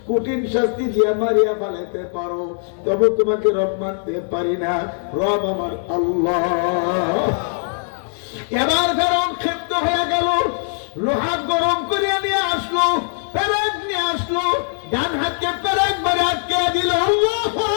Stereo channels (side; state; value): right; silent; digital silence